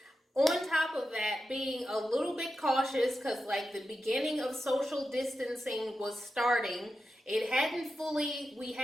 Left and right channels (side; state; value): both; normal; correlation 0.90